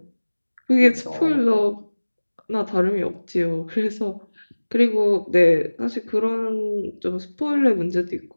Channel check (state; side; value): inverted; both; correlation -1.00